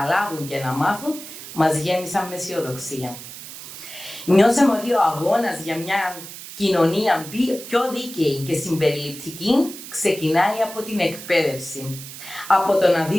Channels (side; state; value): right; noise; hiss, 13 dB below the sound